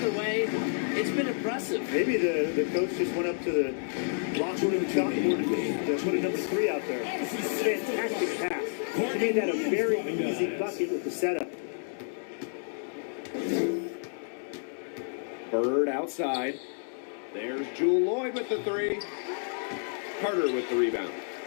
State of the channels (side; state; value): right; silent; digital silence